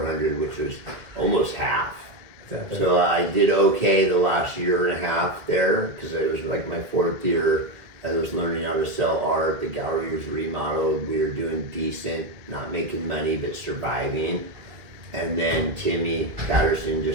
which was almost half. So I did okay the last year and a half there, because it was like my 4th year. I was learning how to sell art. The gallery was remodeled. We were doing decent, not making money, but surviving. And then Timmy Patterson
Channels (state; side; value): late; left; 2.1 ms